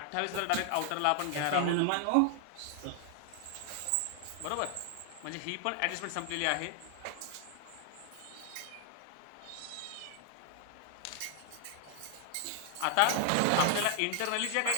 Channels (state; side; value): different; both; correlation 0.00